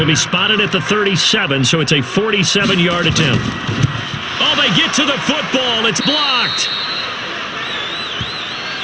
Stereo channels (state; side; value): identical; both; correlation 1.00